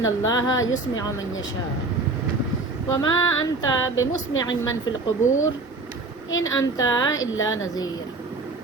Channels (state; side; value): quieter; left; 3.4 dB